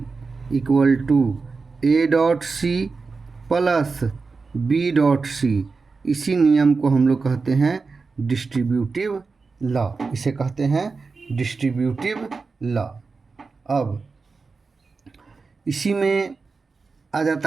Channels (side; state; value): left; quieter; 4.4 dB